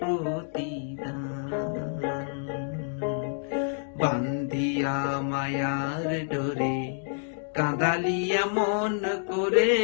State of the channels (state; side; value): silent; right; digital silence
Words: প্রতিদান। বান্ধিয়া মায়ার ডোরে কাঁদালিয়া মন করে,